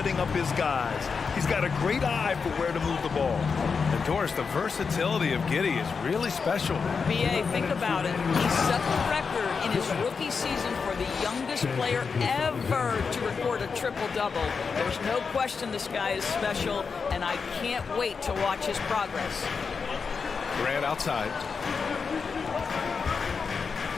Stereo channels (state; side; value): quieter; right; 5.4 dB